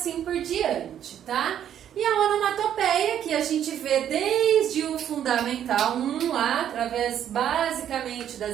por diante, tá? E a onomatopeia, que a gente vê desde o Fundamental 1 lá, através basicamente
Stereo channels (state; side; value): quieter; left; 10.0 dB